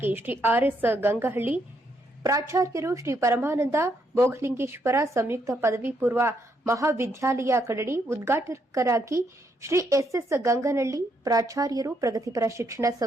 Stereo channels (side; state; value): both; normal; correlation 0.75